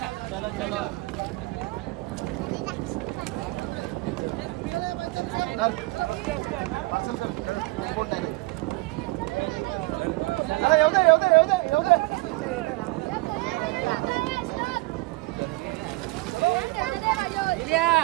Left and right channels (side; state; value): left; quieter; 22.4 dB